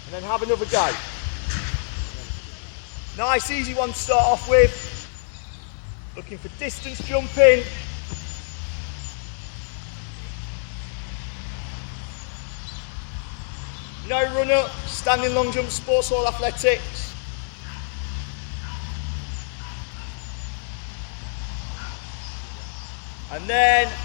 then have another go. Nice, easy one to start off with. Looking for distance jumping. No run up, standing long jump, sports hall athletics. And then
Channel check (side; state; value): right; silent; 61 dB below the other